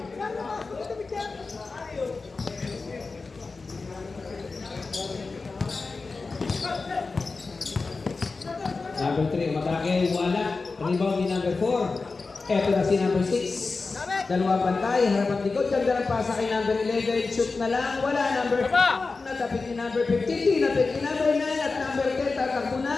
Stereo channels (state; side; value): quieter; right; 4.0 dB